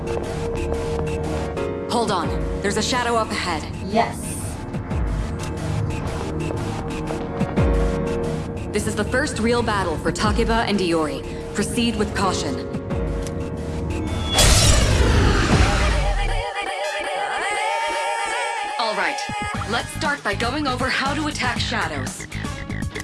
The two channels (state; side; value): identical; both; correlation 1.00